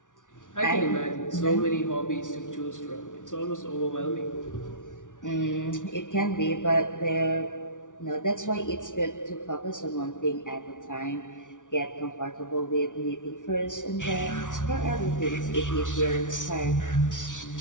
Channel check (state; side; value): late; right; 0.87 ms